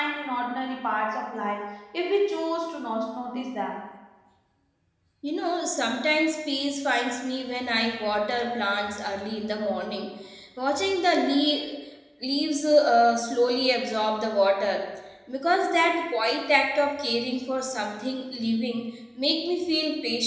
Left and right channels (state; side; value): identical; both; correlation 1.00